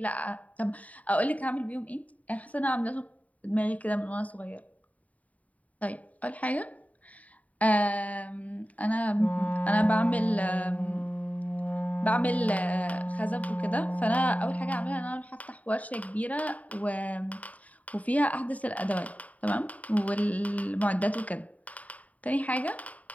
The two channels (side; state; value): right; late; 0.070 ms